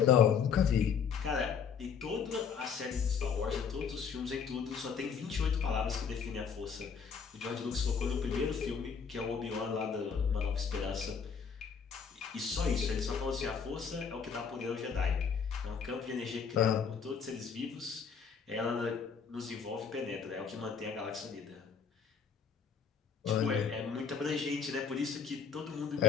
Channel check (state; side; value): quieter; right; 6.4 dB